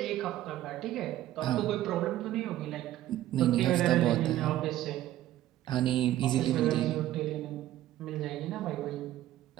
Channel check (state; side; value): quieter; left; 13.8 dB